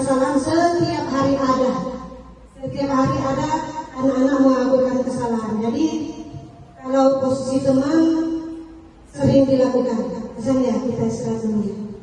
setiap hari ada, setiap hari ada anak-anak melakukan kesalahan. Jadi kalau posisi teman sering dilakukan, misalnya kita istirahat dulu ya.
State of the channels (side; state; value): both; identical; correlation 1.00